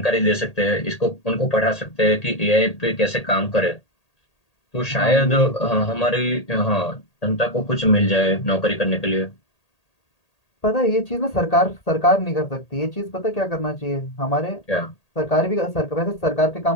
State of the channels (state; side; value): late; right; 1.8 ms